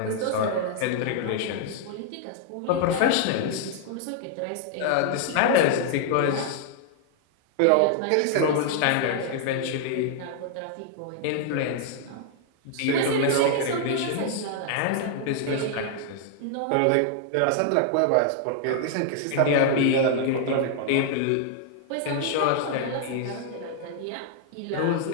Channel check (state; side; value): different; both; correlation 0.00